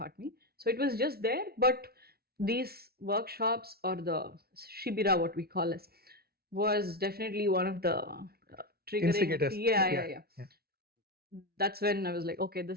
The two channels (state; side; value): late; left; 0.45 ms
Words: me. So it was just there. But these workshops, or the shibira, what we call it, was definitely one of the triggering. Yeah. That's when I was like, okay,